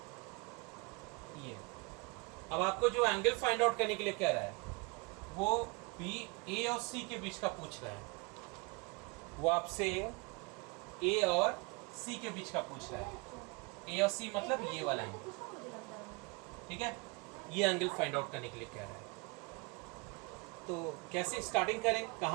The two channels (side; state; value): left; quieter; 28.2 dB